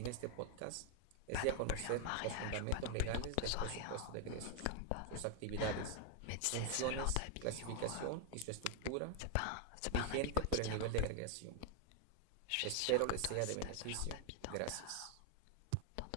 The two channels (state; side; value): different; both; correlation 0.00